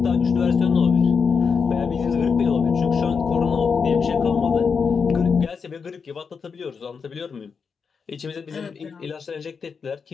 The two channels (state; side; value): quieter; right; 5.7 dB